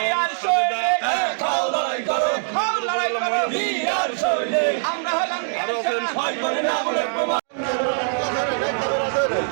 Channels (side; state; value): left; silent; digital silence